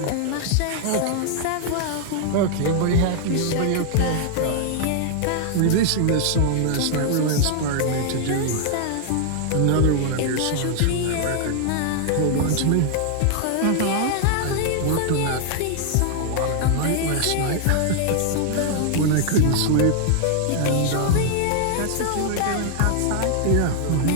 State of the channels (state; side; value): different; both; correlation 0.00